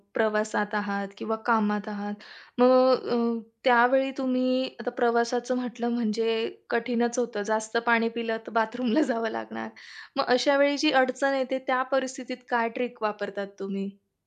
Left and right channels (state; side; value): identical; both; correlation 1.00